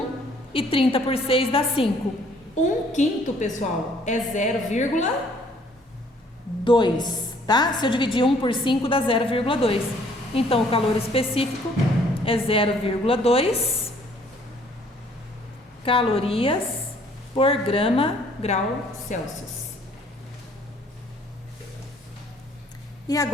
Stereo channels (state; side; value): normal; both; correlation 0.60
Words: E 30 por 6 dá 5. 1/5, pessoal, é 0,2. Tá? Se eu dividir 1 por 5 dá 0,2. Então, o calor específico é 0,2 calorias por grau Celsius. E